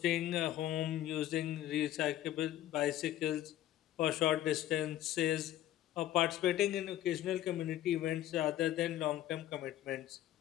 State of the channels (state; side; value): quieter; right; 13.1 dB